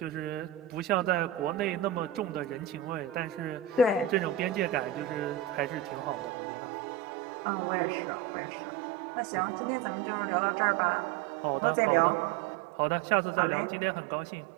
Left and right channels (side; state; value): left; drops out; at 6.3 s